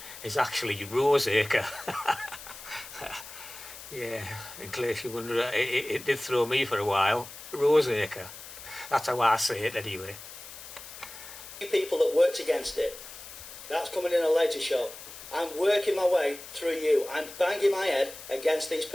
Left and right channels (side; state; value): left; noise; hiss, 14 dB below the sound